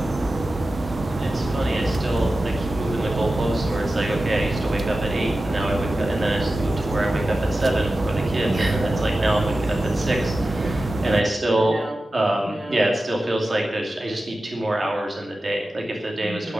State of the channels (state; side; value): normal; both; correlation 0.94